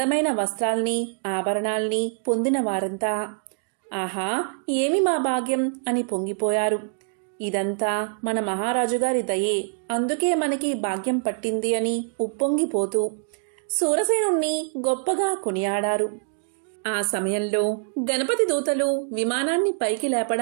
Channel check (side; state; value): left; silent; digital silence